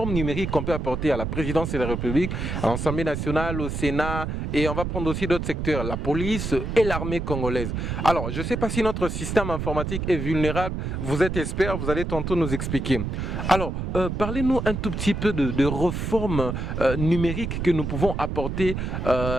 numériques qu'on peut apporter à la présidence de la République, à l'Assemblée nationale, au Sénat, et on va prendre aussi d'autres secteurs, la police et l'armée congolaise. Alors, je ne sais pas si notre système informatique est vulnérable. Vous êtes expert, vous allez tantôt nous expliquer. Alors, parlez-nous un tout petit peu de réformes numériques que nous pouvons apporter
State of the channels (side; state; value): right; noise; rumble, 3 dB below the sound